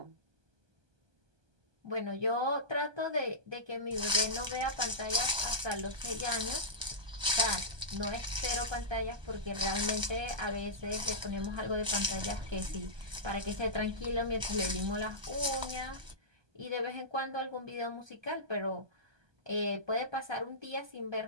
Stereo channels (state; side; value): late; left; 1.2 ms